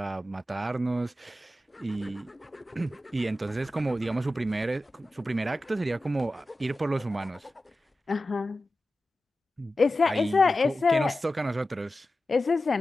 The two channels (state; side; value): normal; both; correlation 0.93